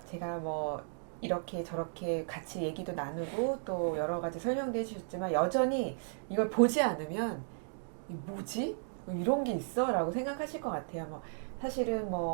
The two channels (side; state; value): left; silent; digital silence